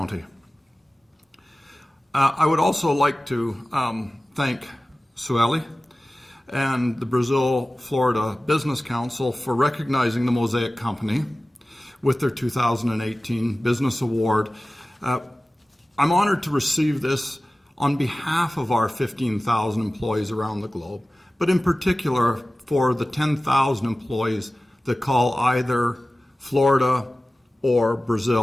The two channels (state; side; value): normal; both; correlation 0.96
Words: I would also like to thank Sueli and the Brazil, Florida Business Council for recognizing the Mosaic Company with their 2018 Business Award. I'm honored to receive this on behalf of our 15,000 employees around the globe, but in particular for the 10,000 employees that call either Florida or